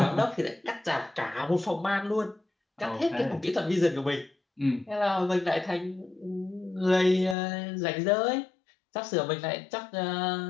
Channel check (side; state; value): right; drops out; at 7.4 s